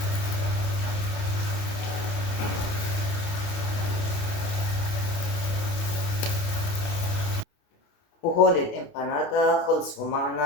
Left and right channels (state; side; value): late; right; 28 ms